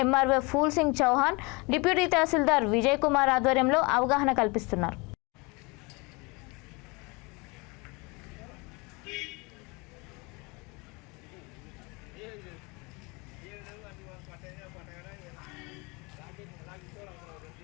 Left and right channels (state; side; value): quieter; right; 27.5 dB